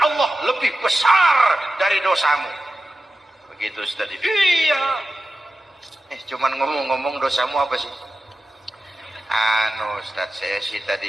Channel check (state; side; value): normal; both; correlation 0.93